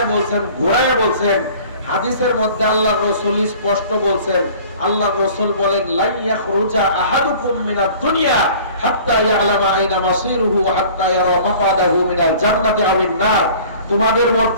বলছেন, ঘোরায় বলছেন। হাদিসের মধ্যে আল্লাহর রাসূল স্পষ্ট বলছেন, আল্লাহর রাসূল বলেন লা ইয়াখরুজা আহাদুকুম মিনাদ দুনিয়া হাত্তা ইয়ালামা আইনা মাসিরুহু ওয়া হাত্তা ইয়ারা মাকাদাহু মিনাল জান্নাতি আওয়ান নার। তোমাদের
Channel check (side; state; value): both; inverted; correlation -0.47